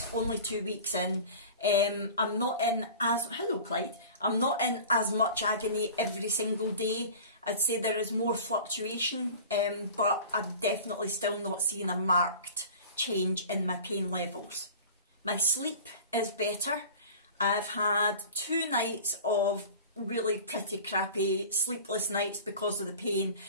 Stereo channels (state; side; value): inverted; both; correlation -0.39